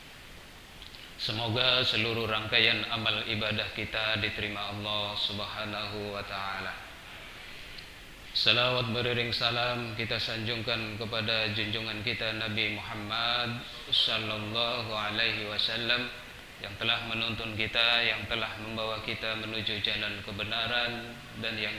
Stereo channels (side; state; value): both; identical; correlation 1.00